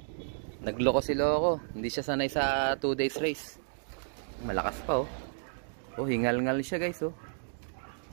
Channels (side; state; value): left; silent; digital silence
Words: Nagloko si Loko. Hindi siya sanay sa 2 days race. Malakas pa oh. Oh, hingal-ngal siya guys oh.